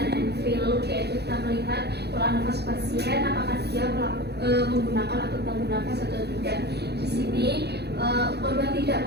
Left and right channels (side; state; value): left; late; 0.48 ms